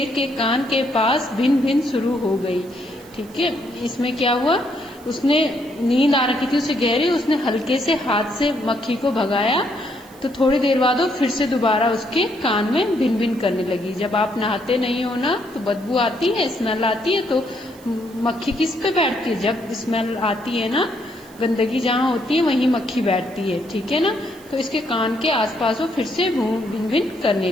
के कान के पास भिन भिन शुरू हो गई। ठीक है, इसमें क्या हुआ, उसने नींद आ रखी थी उसे गहरी, उसने हल्के से हाथ से मक्खी को भगाया तो थोड़ी देर बाद वो फिर से दोबारा उसके कान में भिन भिन करने लगी। जब आप नहाते नहीं हो ना तो बदबू आती है, स्मेल आती है, तो मक्खी किस पे बैठती है, जब स्मेल आती है ना, गंदगी जहाँ होती है वहीं मक्खी बैठती है। ठीक है ना, तो इसके कान के आसपास वो फिर से भिन भिन करने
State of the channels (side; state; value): right; noise; hiss, 25 dB below the sound